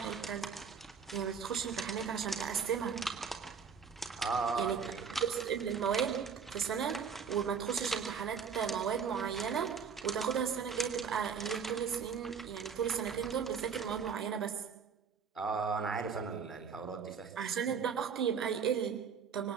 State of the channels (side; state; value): left; quieter; 6.5 dB